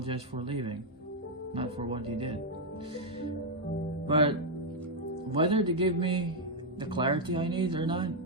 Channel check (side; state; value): both; normal; correlation -0.01